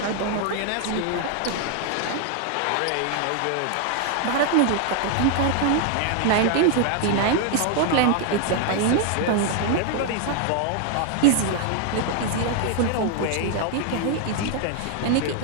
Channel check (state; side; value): different; both; correlation 0.00